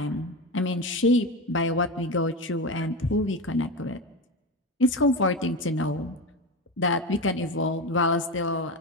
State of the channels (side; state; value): both; normal; correlation 0.20